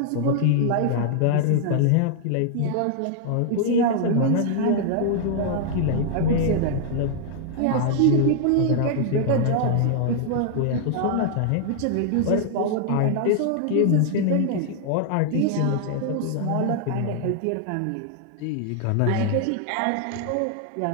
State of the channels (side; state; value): both; different; correlation 0.00